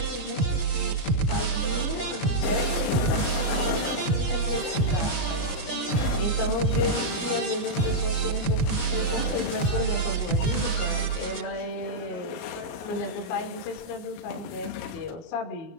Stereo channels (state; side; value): late; right; 33 ms